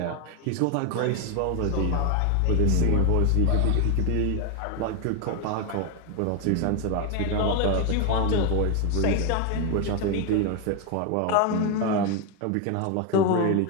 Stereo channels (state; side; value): different; both; correlation 0.01